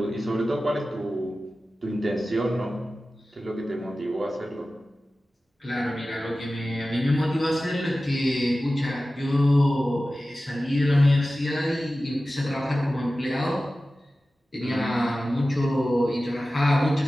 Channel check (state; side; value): normal; both; correlation 0.95